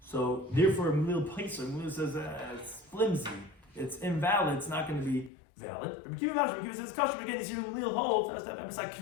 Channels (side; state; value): right; drops out; at 5.3 s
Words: So therefore, Mil Paisa says it's flimsy, it's invalid, it's not going to be valid. Rabbi Kiva says kasher, again, you see Mil holds, it's like